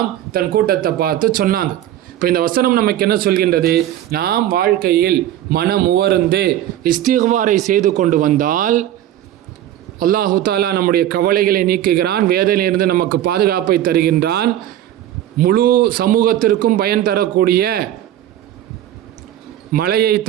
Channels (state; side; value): quieter; left; 12.3 dB